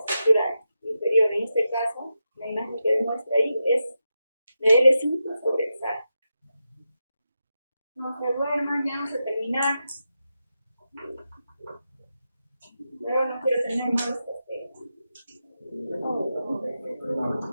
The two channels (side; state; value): both; inverted; correlation -0.88